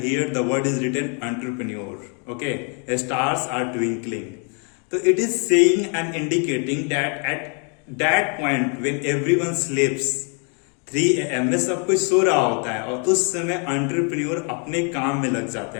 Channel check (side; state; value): right; quieter; 38.8 dB